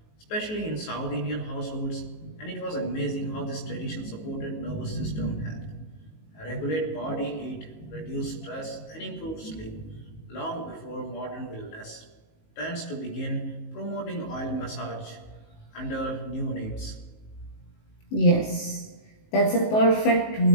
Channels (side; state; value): right; late; 19 ms